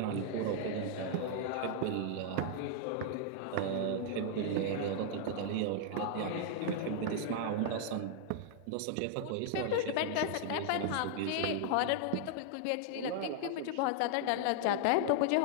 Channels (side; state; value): both; different; correlation -0.01